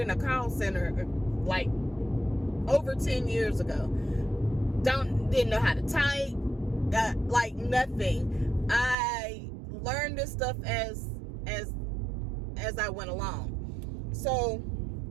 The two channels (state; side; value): drops out; left; at 9.0 s